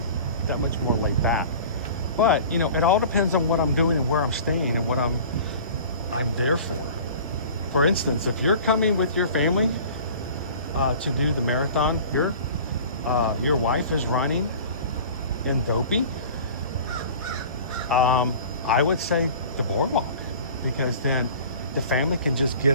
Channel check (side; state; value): both; inverted; correlation -0.43